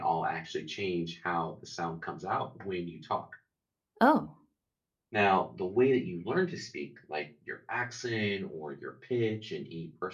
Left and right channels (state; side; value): identical; both; correlation 1.00